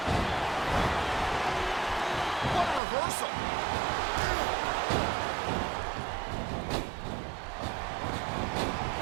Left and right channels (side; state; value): left; drops out; at 2.8 s